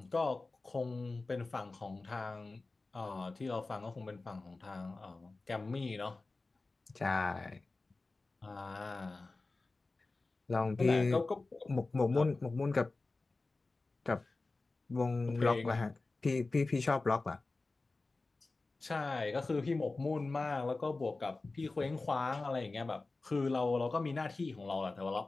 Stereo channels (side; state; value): right; quieter; 3.5 dB